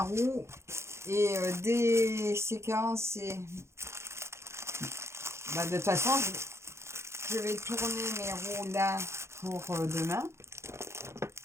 roue. Et des séquences, et bah, de toute façon, je vais tourner mes roues là pour demain.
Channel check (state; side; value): late; left; 0.13 ms